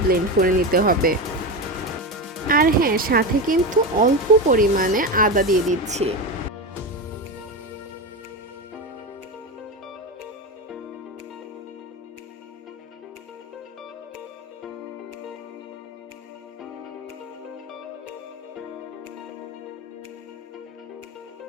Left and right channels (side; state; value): both; normal; correlation 0.18